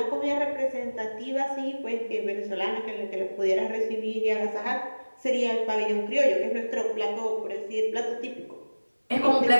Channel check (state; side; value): inverted; both; correlation -1.00